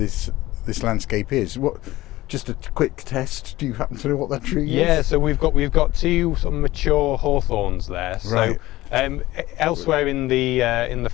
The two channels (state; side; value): quieter; right; 17.3 dB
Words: landscape is. Just a quick test. Do you happen to know what that tree is? Yeah, so we've got two sort of mature hawthorns there. Right. So elsewhere in the